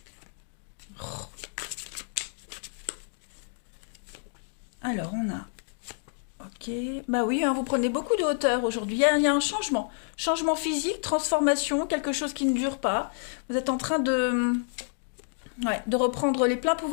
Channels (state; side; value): silent; right; digital silence